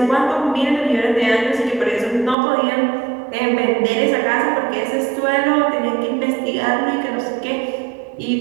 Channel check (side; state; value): left; drops out; at 2.4 s